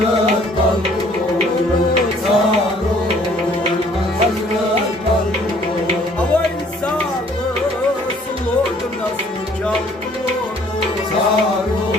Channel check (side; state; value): both; normal; correlation 0.59